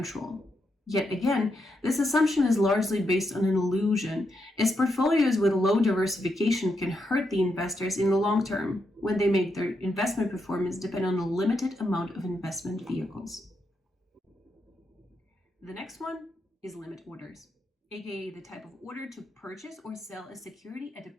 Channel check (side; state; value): both; normal; correlation 0.82